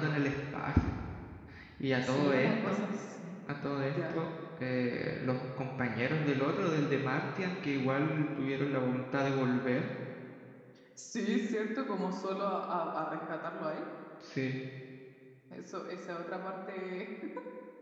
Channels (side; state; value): both; identical; correlation 1.00